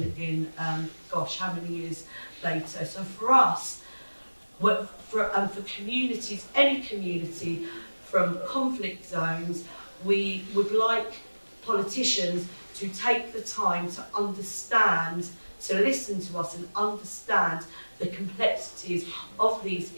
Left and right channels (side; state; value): both; inverted; correlation -1.00